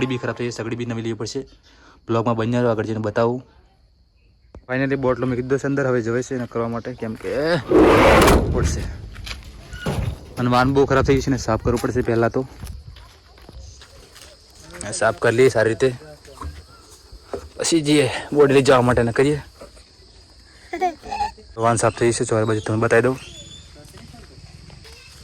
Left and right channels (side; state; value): both; identical; correlation 1.00